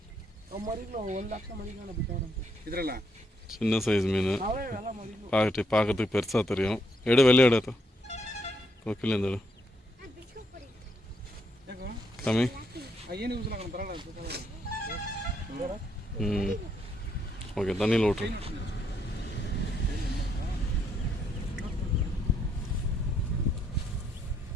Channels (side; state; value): both; normal; correlation 0.75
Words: ಇದ್ರಲ್ಲ சின்ன சைஸ் மீன் பார்க்கறதுக்கு பெருசாக தெரியும். எடு வெளியே எடு கொக்கில் இருந்து எடு ಯಾಕೋ கம்மி. ಏನು ಯೂಸ್ ಆಗಲ್ಲ ಬರಲ್ಲ ஓகே தண்ணியில் விட்ரு.